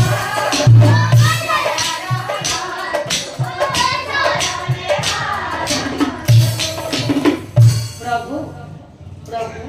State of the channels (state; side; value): identical; both; correlation 1.00